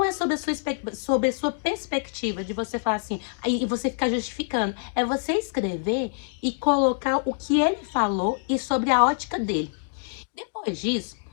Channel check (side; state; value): right; silent; digital silence